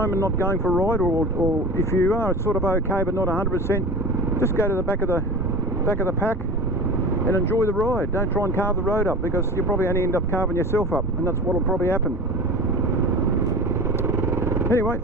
and not going for a ride, or if you are sort of okay but not 100%, just go to the back of the pack and enjoy the ride. Don't try and carve the road up, because you'll probably only end up carving yourself up, and that's what will probably happen. Anyway,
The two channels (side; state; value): both; normal; correlation 0.32